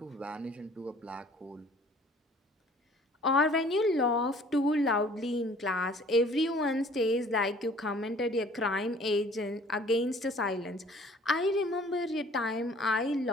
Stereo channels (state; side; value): normal; both; correlation 0.53